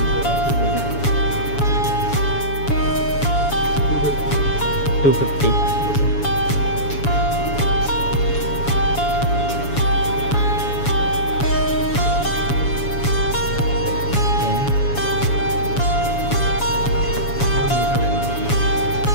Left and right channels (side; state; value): right; late; 7.1 ms